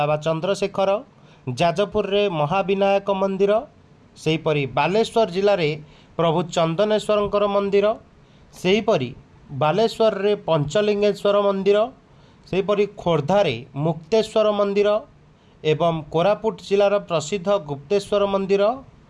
चंद्रशेखर, जाजपुर रे महाविनायक मंदिर, सेहीपरि बालेश्वर जिले में प्रभु चंदनेश्वर मंदिर, सेहीपरि बालेश्वर रे पंचलिंगेश्वर मंदिर, सेहीपरि खोर्धा रे मुक्तेश्वर मंदिर एवं कोरापुट जिलार प्रसिद्ध गुप्तेश्वर मंदिर,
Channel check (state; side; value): identical; both; correlation 1.00